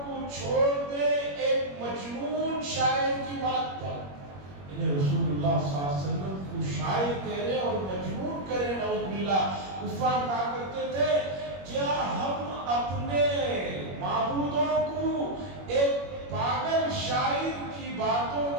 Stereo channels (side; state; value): left; late; 21 ms